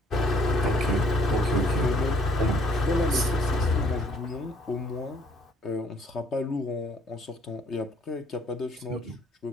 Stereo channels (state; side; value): normal; both; correlation 0.63